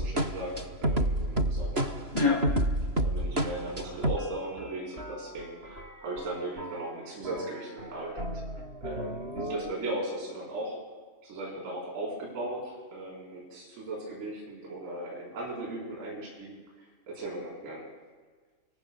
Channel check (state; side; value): late; left; 3.0 ms